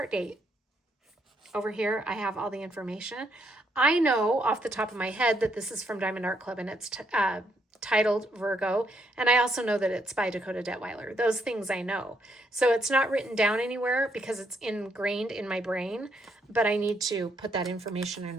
date. Over here, I have all the information. I know off the top of my head that this is from Diamond Art Club and it's titled Virgo, and I also know that it's by Dakota Detweiler. Those things I know. So it's not written down anywhere because it's ingrained in my brain, but I need to put that information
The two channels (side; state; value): both; normal; correlation 0.75